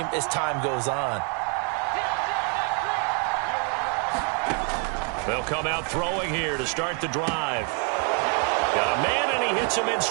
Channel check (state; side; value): quieter; left; 39.4 dB